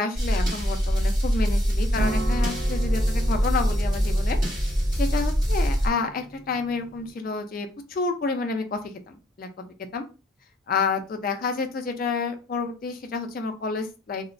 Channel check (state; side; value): normal; both; correlation 0.70